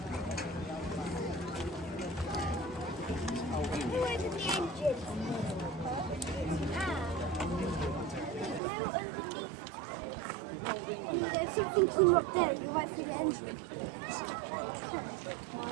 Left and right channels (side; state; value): left; drops out; at 8.6 s